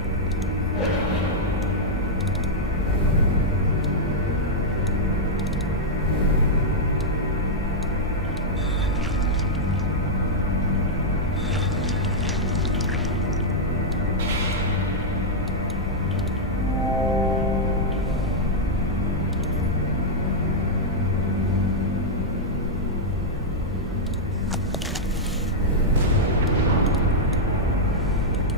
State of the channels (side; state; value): both; normal; correlation -0.05